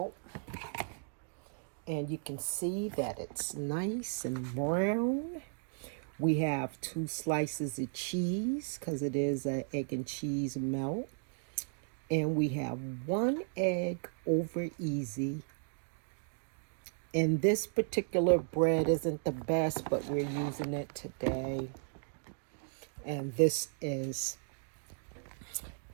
And you can see that it's nice and brown. We have 2 slices of cheese because it is an egg and cheese melt. And we have 1 egg over easy. And this particular bread isn't the best, but we're using it today. And this is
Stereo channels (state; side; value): silent; left; digital silence